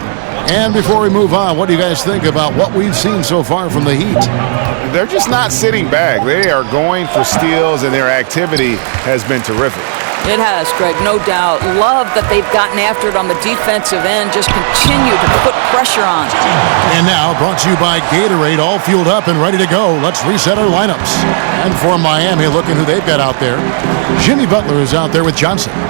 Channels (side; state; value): left; silent; digital silence